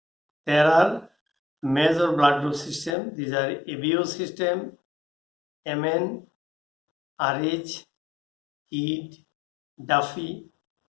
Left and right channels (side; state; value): right; drops out; at 3.0 s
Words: There are major blood group system. These are ABO system, MN, RH, HEAT, Duffy,